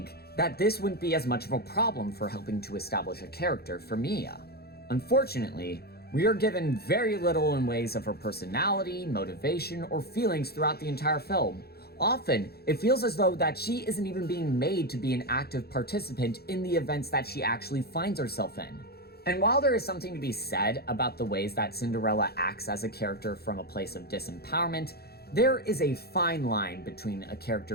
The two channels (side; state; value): right; late; 0.46 ms